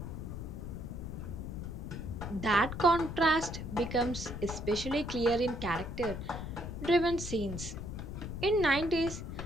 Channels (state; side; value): noise; left; rumble, 7 dB below the sound